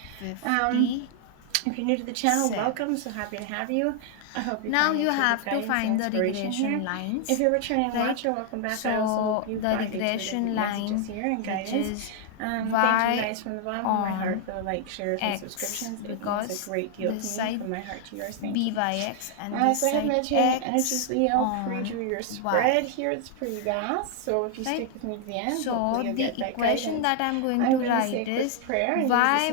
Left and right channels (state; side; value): different; both; correlation 0.00